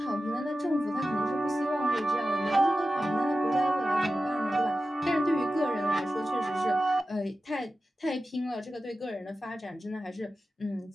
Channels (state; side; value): normal; both; correlation 0.93